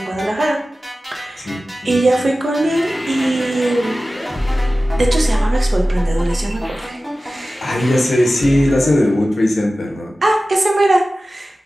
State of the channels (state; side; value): normal; both; correlation 0.96